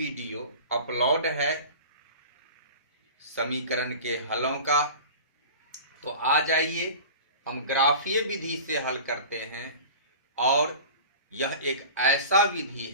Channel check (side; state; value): both; inverted; correlation -0.37